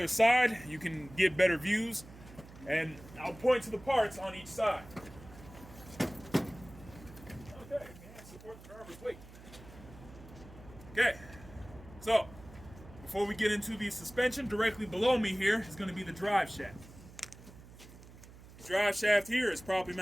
side. You can get better views, and I'll point to the parts on each side. Okay, and support the driver's weight. Okay, so before we get into the suspension, directly below me here is going to be the drive shaft. The drive shaft here is properly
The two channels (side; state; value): right; noise; hum, 18 dB below the sound